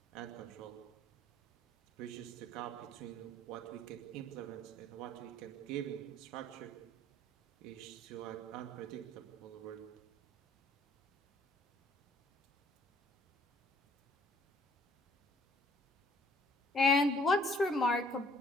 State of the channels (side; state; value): both; normal; correlation 0.59